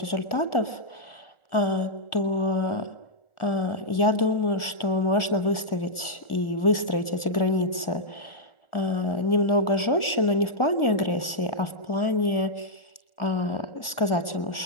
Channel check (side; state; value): right; late; 1.4 ms